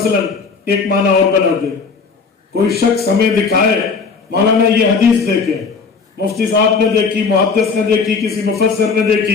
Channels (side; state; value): right; quieter; 5.0 dB